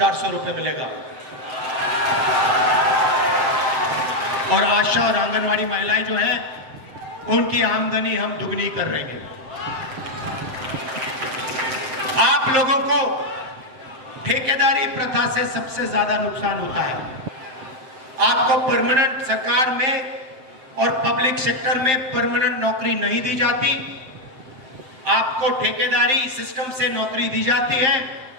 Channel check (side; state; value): left; late; 7.8 ms